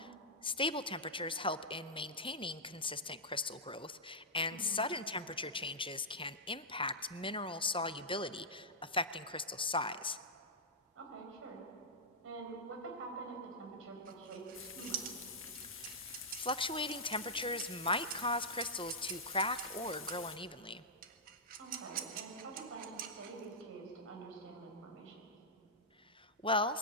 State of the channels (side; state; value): both; normal; correlation -0.09